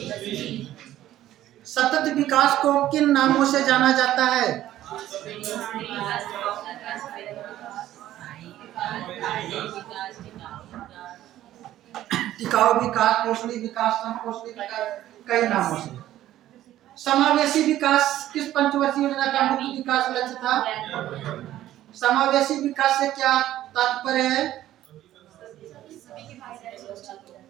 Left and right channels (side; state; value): left; quieter; 13.4 dB